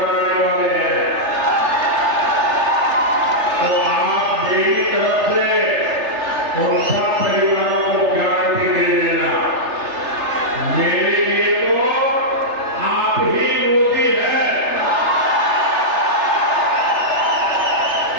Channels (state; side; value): late; left; 3.3 ms